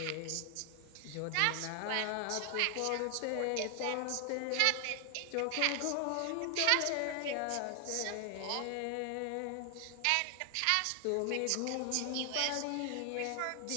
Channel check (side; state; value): both; different; correlation 0.00